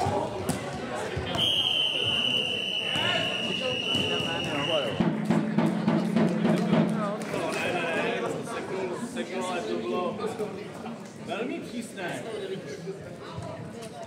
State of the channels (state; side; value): identical; both; correlation 1.00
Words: Seknul, ale to bylo velmi přísné.